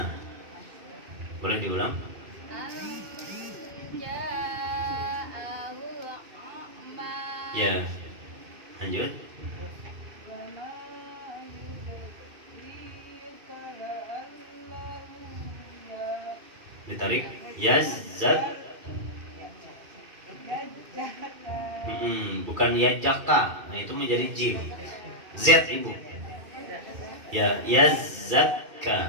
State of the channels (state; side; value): late; left; 2.6 ms